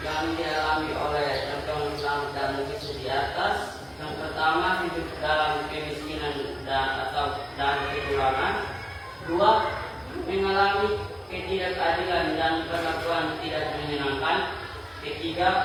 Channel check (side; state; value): both; identical; correlation 1.00